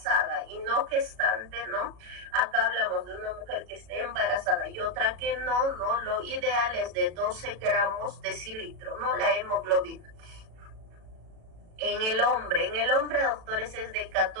y no gestante, ¿no? Acá hablamos de una mujer que esté embarazada y otra que no, ¿no? Lo ideal es de 12 gramos de cilitro, ¿no?, la hemoglobina. En el hombre, doctores, es de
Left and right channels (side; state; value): left; late; 37 ms